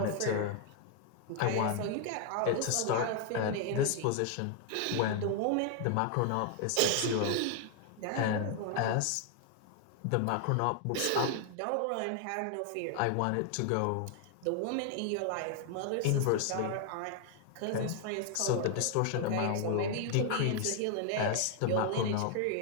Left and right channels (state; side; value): different; both; correlation 0.00